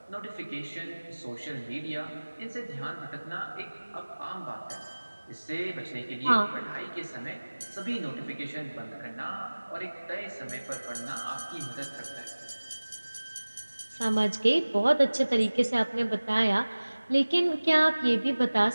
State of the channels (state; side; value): inverted; both; correlation -1.00